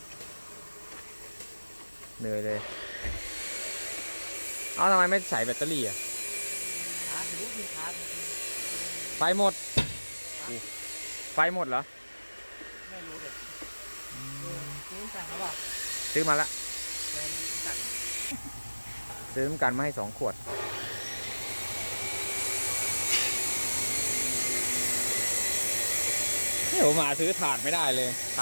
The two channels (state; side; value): inverted; both; correlation -1.00